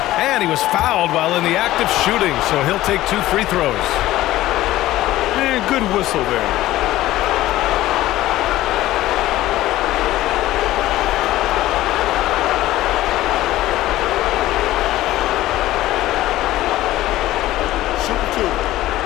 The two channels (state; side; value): quieter; right; 15.6 dB